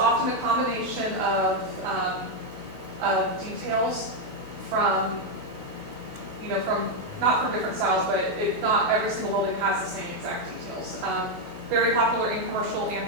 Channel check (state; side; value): late; left; 12 ms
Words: a combination of details from not from different styles, but not every single building has the same exact details. Very popular in commercial and